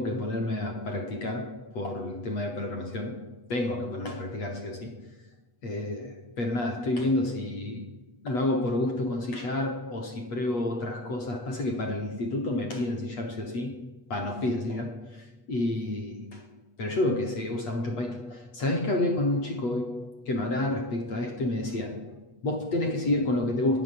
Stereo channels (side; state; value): right; late; 8.3 ms